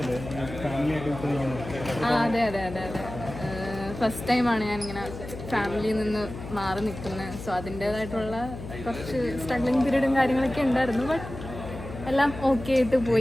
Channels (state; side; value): noise; left; hum, 11 dB below the sound